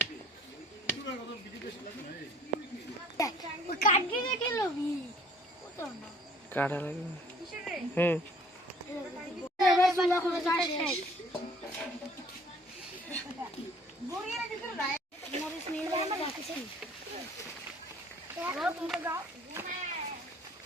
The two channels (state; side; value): normal; both; correlation 0.54